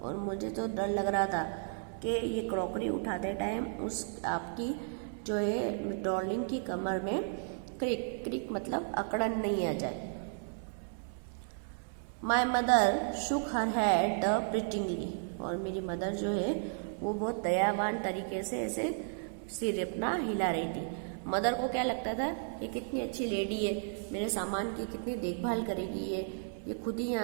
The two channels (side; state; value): left; silent; 55 dB below the other